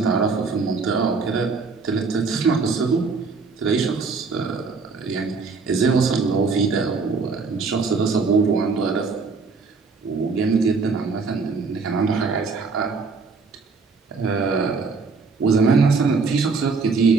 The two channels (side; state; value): left; quieter; 4.6 dB